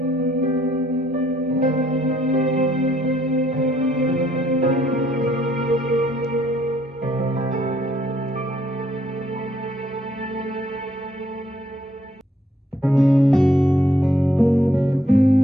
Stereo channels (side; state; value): both; normal; correlation 0.68